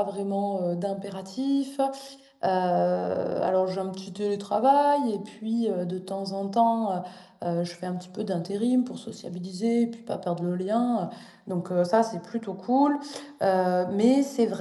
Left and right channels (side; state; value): both; identical; correlation 1.00